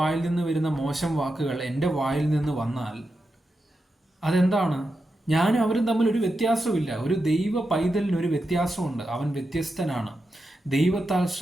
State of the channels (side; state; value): both; normal; correlation 0.88